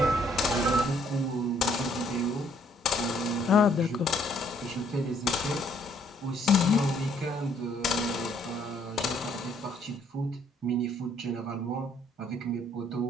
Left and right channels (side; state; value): both; normal; correlation 0.66